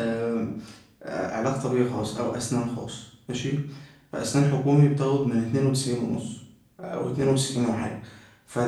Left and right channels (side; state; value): both; identical; correlation 1.00